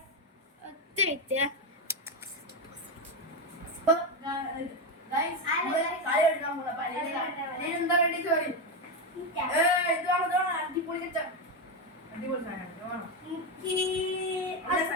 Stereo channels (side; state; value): both; normal; correlation 0.10